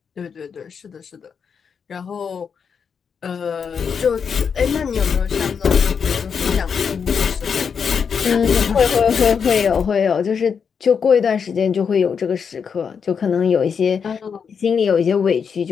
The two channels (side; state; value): right; quieter; 6.5 dB